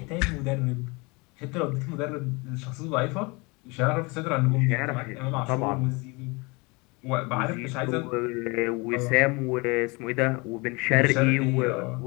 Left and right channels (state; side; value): quieter; right; 27.2 dB